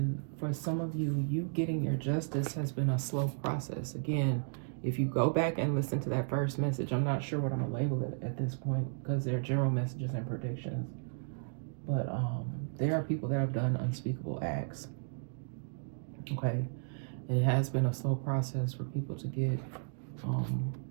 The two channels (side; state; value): left; silent; digital silence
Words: for some of you, getting your justice has been a slow process. Again, if you go back and listen to that first message, I'm not sure what I'm gonna label it at this point because they're general messages and predictions. But there are people that have done unspeakable acts. Okay, it has been a slow process for people to get